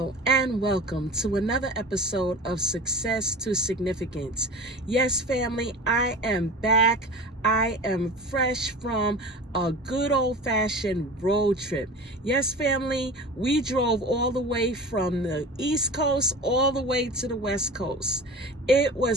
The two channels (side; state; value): both; normal; correlation 0.35